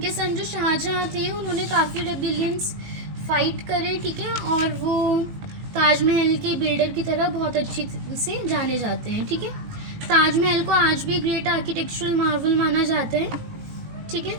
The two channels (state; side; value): late; left; 18 ms